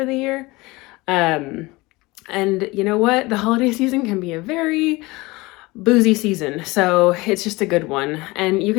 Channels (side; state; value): right; quieter; 22.4 dB